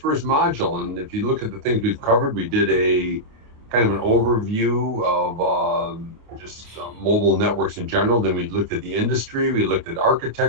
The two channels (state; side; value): late; left; 28 ms